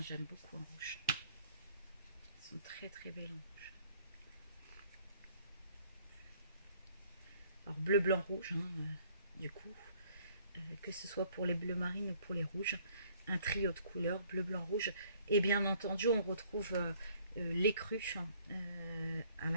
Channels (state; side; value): inverted; both; correlation -0.59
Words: j'aime beaucoup en rouge. Elles sont très très belles en rouge. Alors bleu, blanc, rouge, du coup, que ce soit pour les bleus marines ou pour les rouges, un trio de couleurs, bleu, blanc, rouge. Et bien entendu, on retrouve l'écru à